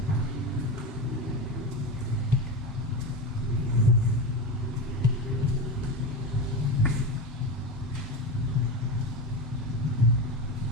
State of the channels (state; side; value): normal; both; correlation 0.22